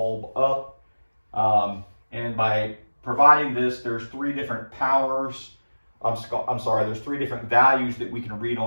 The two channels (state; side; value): inverted; both; correlation -1.00